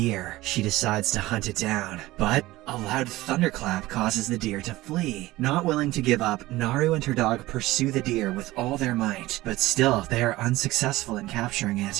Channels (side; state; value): left; quieter; 18.0 dB